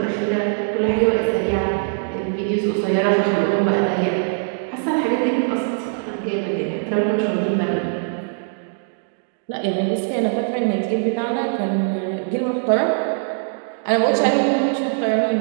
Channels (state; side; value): silent; left; digital silence